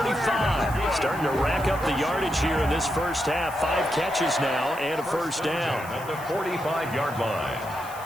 Starting to rack up the yardage here in this first half. 5 catches now and a first down. At the 45-yard line.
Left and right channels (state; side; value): noise; right; hiss, 17 dB below the sound